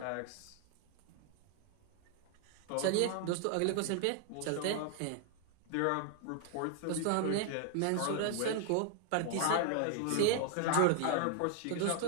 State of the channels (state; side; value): different; both; correlation 0.00